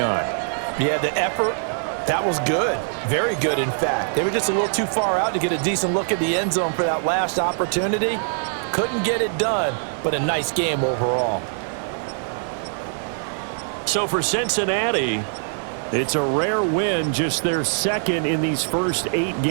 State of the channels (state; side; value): silent; left; 64 dB below the other